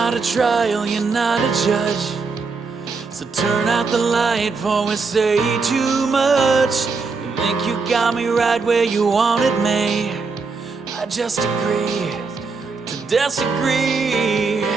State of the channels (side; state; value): left; quieter; 4.5 dB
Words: a trial, you're not a judge. So turn out the light before we say too much. You think you got me right where you wanted me. I just agree to disagree.